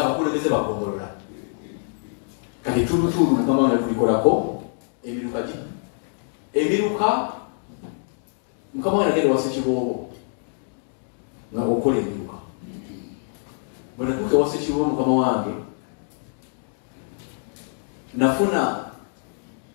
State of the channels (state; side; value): silent; right; digital silence